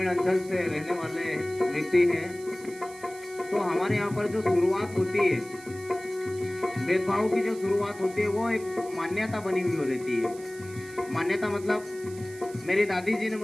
अंचल से रहने वाले व्यक्ति हैं, तो हमारे यहाँ पर जो शुरुआत होती है, भेदभाव की जो शुरुआत होती है, वो एक मान्यता बनी हुई रहती है। मान्यता मतलब मेरी दादी जी ने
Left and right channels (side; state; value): right; noise; hiss, 19 dB below the sound